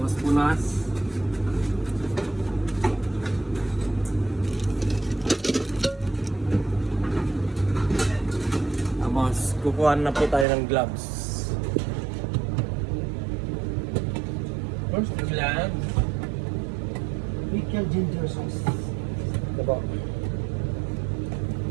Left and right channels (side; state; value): left; drops out; at 10.5 s